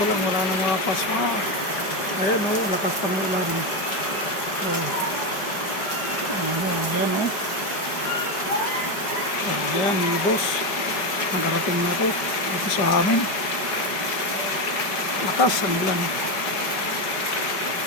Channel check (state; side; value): late; right; 5.1 ms